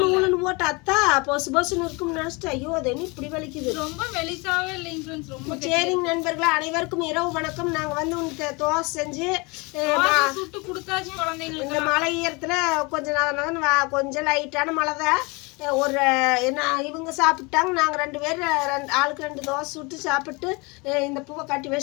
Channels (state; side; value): quieter; right; 27.5 dB